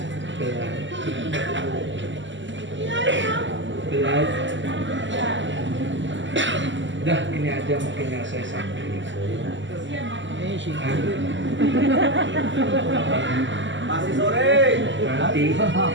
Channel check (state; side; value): late; left; 0.54 ms